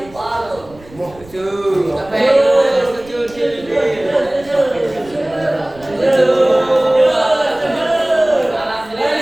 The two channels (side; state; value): right; noise; rumble, 23 dB below the sound